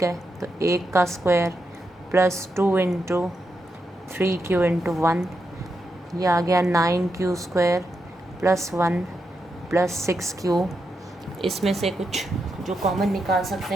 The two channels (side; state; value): both; normal; correlation 0.85